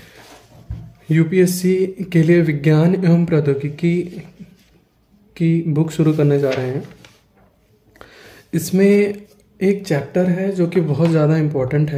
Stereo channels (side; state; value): both; identical; correlation 1.00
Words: यूपीएससी के लिए विज्ञान एवं प्रौद्योगिकी की बुक शुरू करने जा रहे हैं। इसमें एक चैप्टर है जो कि बहुत ज़्यादा इम्पोर्टेंट